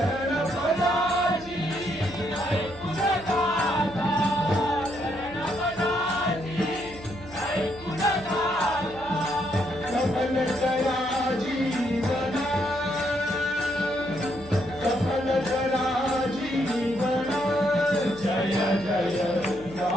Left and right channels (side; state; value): right; noise; hum, 19 dB below the sound